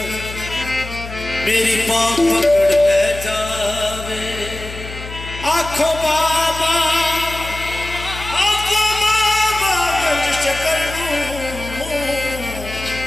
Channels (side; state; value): left; noise; hum, 11 dB below the sound